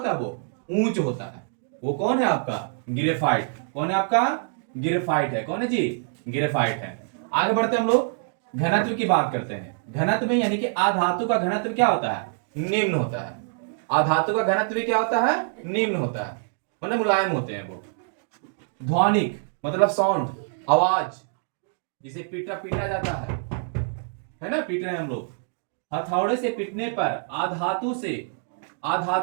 है, वो ऊंच होता है। वो कौन है आपका, ग्रेफाइट। कौन है आपका, ग्रेफाइट है। कौन है जी, ग्रेफाइट है। आगे बढ़ते हम लोग घनत्व की बात करते हैं। घनत्व में यानी कि आधातु का घनत्व क्या होता है, निम्न होता है। आधातु का घनत्व क्या होता है, निम्न होता है, मतलब मुलायम होते हैं वो। ध्वनिक मतलब साउंड, आवाज, जिसे पीटा जाता है ना, पीट रहे हैं हम लोग, हथौड़े से पीटने पर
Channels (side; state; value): left; silent; digital silence